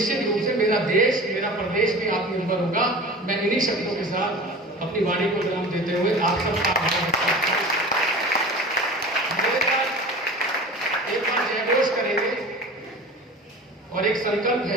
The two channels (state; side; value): normal; both; correlation 0.37